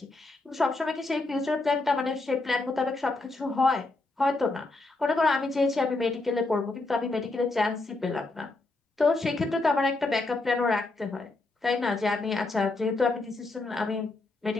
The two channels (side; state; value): right; quieter; 3.2 dB